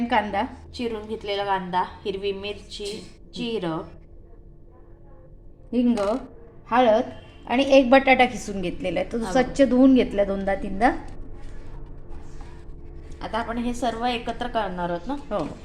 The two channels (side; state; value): both; identical; correlation 1.00